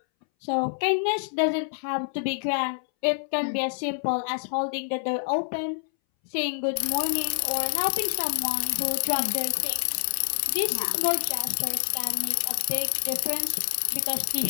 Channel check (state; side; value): silent; right; 60 dB below the other